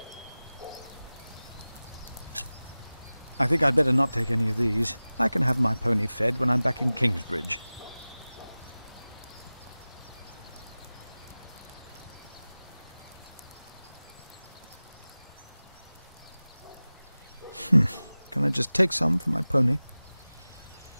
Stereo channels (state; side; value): inverted; both; correlation -0.98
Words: I think I'd better not take any of these. I can have my pony fed when I'm back in Kingsbridge. Can I just take some for my pony?